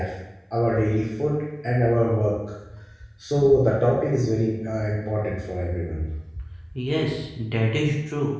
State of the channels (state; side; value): identical; both; correlation 1.00